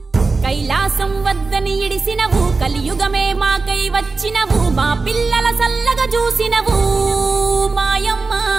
కైలాసం వద్దని ఇడిసినవు, కలియుగమే మాకై వచ్చినవు, మా పిల్లల సల్లగా చూసినవు మాయమ్మ,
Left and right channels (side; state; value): left; quieter; 4.0 dB